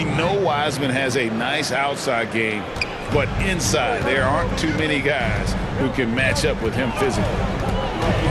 know Wiseman has a nice outside game, but inside there aren't too many guys who can match up with him physically.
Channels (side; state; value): both; identical; correlation 1.00